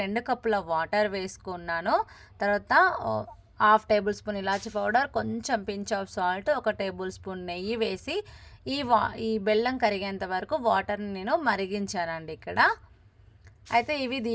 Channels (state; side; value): identical; both; correlation 1.00